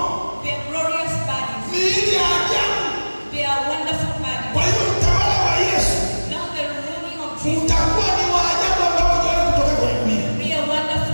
They are glorious bodies. miili ya ajabu. They are wonderful bodies. Kwa hiyo utawala wa Yesu Now the ruling of Jesus utakuwa ni wa ajabu ambao hajawahi kutoka kwenye dunia, will be a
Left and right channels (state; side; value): inverted; both; correlation -1.00